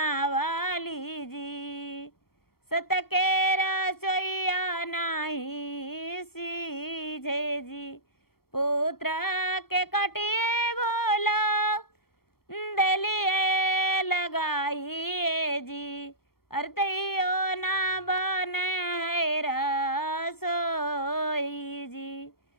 जी, सत के रसोईया नाही सीझे जी। पुत्र के कटिए भोला दलिए लगाई अरे तैयो ना बने है रसोई जी,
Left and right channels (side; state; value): right; late; 0.94 ms